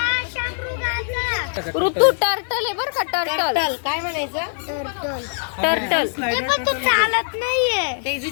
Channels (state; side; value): silent; right; digital silence